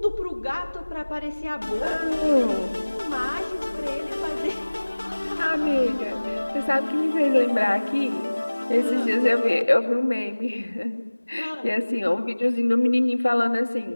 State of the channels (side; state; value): both; inverted; correlation -1.00